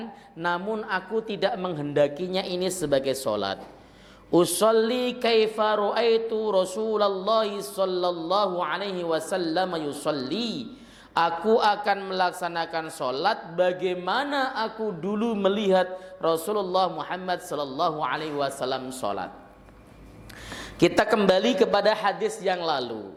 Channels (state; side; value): identical; both; correlation 1.00